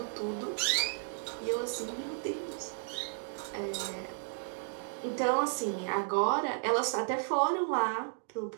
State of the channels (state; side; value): silent; left; digital silence